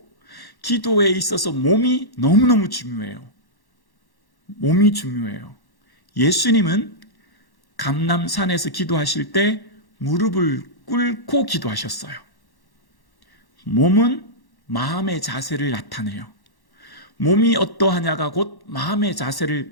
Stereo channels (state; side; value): late; right; 1.1 ms